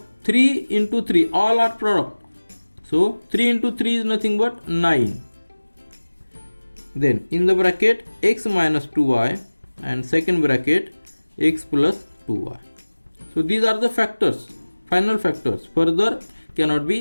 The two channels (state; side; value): inverted; both; correlation -1.00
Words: 3 into 3 all are product, so 3 into 3 is nothing but 9. Then in the bracket x minus 2y and second bracket x plus 2y. So these are the factors, final factors, further cannot